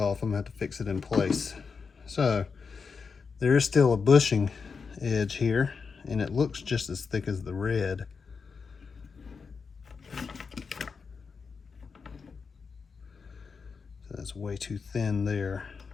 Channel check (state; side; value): quieter; right; 5.3 dB